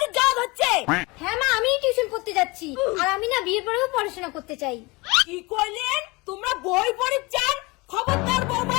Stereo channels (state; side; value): quieter; right; 25.0 dB